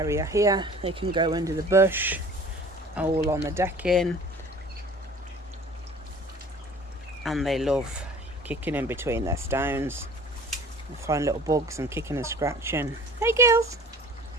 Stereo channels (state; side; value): normal; both; correlation 0.46